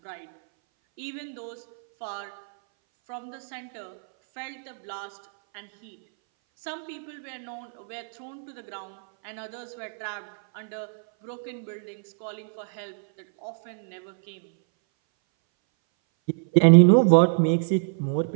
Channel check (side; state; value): left; silent; 59 dB below the other